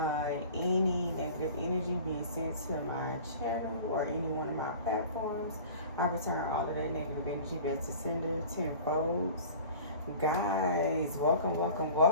Any negative energy being sent to my channel or any one of my platforms, I return all of that negative energy back to sender tenfold. Guys, welcome.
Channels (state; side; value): inverted; both; correlation -0.42